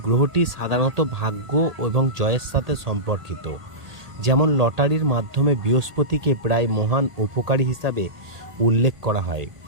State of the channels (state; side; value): late; left; 1.8 ms